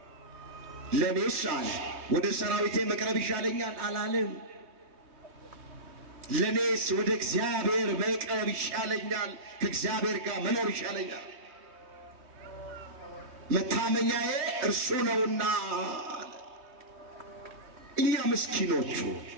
ለእኔስ አለ ወደ ሰራዊቴ መቅረብ ይሻለኛል አላለም። ለእኔስ ወደ እግዚአብሔር መቅረብ ይሻለኛል፣ ከእግዚአብሔር ጋር መኖር ይሻለኛል። መታመኛዬ እርሱ ነውና። እኛ ምስኪኖቹ፣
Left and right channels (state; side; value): late; left; 3.2 ms